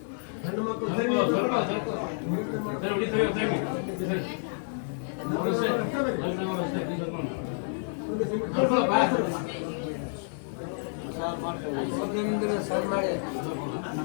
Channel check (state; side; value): silent; right; digital silence